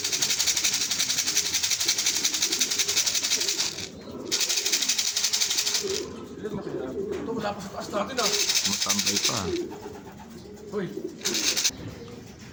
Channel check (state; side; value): identical; both; correlation 1.00